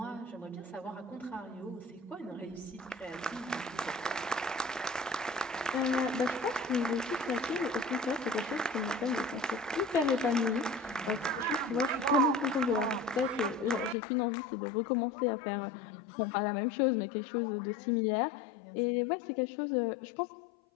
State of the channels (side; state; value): right; drops out; at 14.0 s